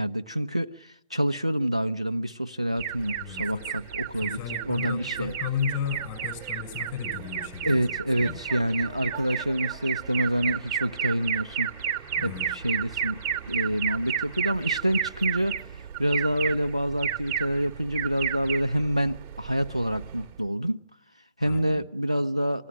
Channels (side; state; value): both; inverted; correlation -0.77